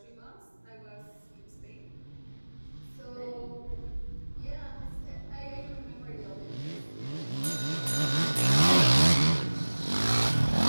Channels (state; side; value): inverted; both; correlation -1.00